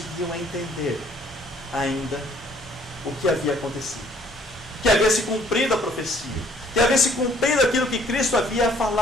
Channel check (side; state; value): both; normal; correlation 0.61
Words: entender ainda o que havia acontecido. Que havia se cumprido a profecia. Que havia se cumprido aquilo que Cristo havia